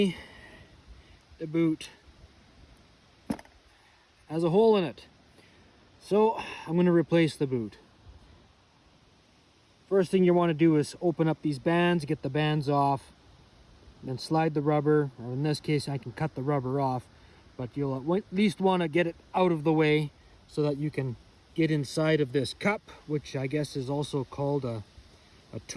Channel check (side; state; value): both; identical; correlation 1.00